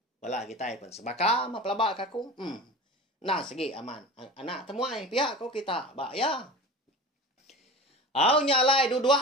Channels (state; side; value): normal; both; correlation 0.34